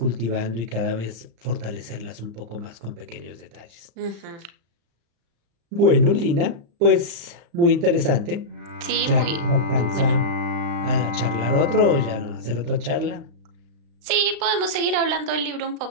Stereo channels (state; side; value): late; left; 35 ms